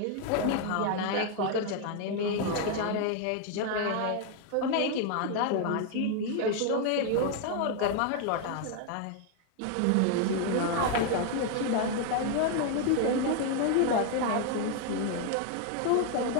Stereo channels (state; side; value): different; both; correlation 0.00